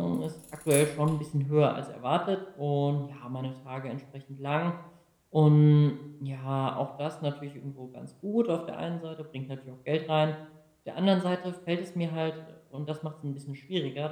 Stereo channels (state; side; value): identical; both; correlation 1.00